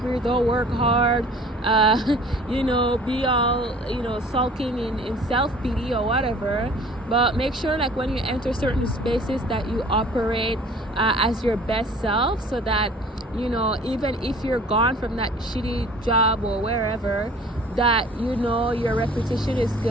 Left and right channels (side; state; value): both; normal; correlation 0.49